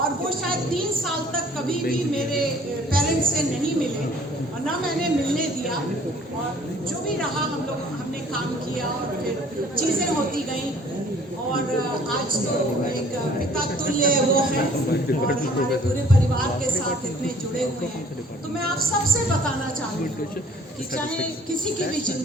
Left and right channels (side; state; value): both; normal; correlation 0.55